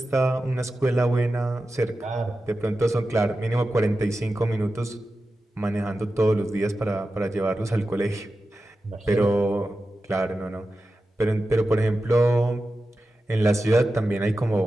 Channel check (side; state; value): both; normal; correlation 0.92